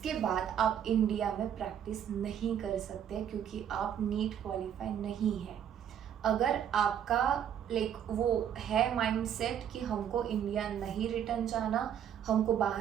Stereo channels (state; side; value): quieter; left; 9.3 dB